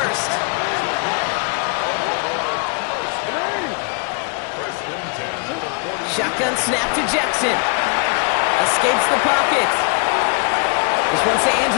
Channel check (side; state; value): right; quieter; 36.8 dB